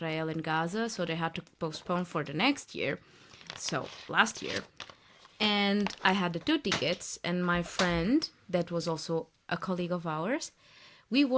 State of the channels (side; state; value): both; identical; correlation 1.00